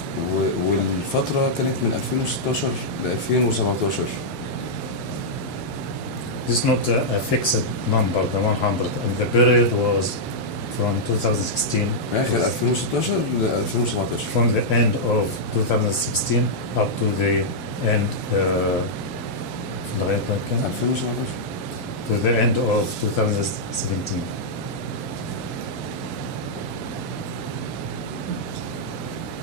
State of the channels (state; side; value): late; left; 1.5 ms